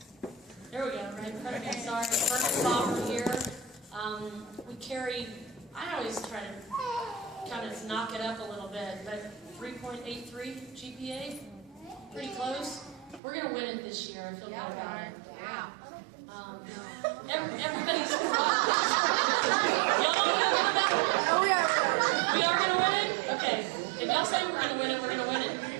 There we go, right in front of me, sorry. Fern and Bob are here. We carry, I always try to kind of knock it up a little bit, but 3.83 GPA, pretty close. We're going to win it this year, I feel good about it. Yeah. Everybody's y'all don't feel good about it? Oh, we are. We are going to win it? Okay. If y'all say we're going to win it, we're going to win it.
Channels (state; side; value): drops out; left; at 13.2 s